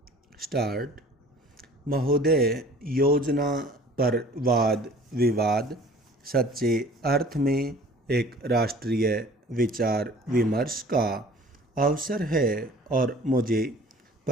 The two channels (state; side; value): normal; both; correlation 0.48